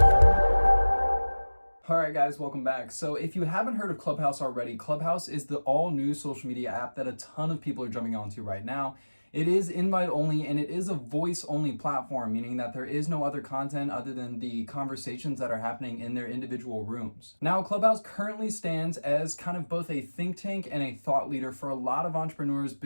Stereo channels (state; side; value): inverted; both; correlation -1.00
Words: Alright guys, welcome back. So if you haven't heard of ClubHouse already, ClubHouse is the all-new social media app that a ton of people are jumping onto right now. It is invite only and it is a voice only platform, meaning that there is no other content other than the conversations that are happening in their individual rooms. Now, Clubhouse currently stands as kind of both a think tank and a thought leader for a lot of entrepreneurs,